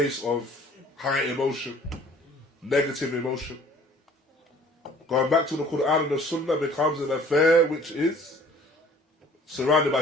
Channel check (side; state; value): both; normal; correlation 0.52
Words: of high emotion, negative emotion. Going back to the Quran and the Sunnah becomes an affair which is surrounded by